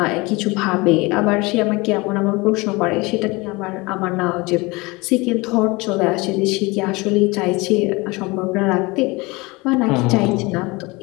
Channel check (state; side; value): quieter; right; 24.1 dB